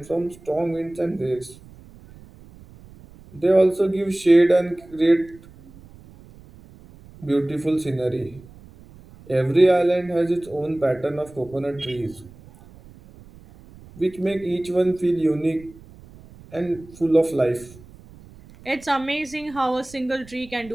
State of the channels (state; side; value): noise; right; rumble, 22 dB below the sound